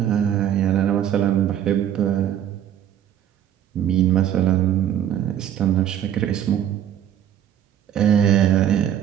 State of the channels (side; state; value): left; quieter; 10.4 dB